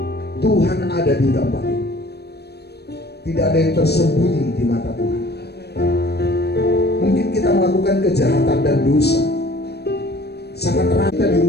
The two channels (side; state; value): right; late; 0.48 ms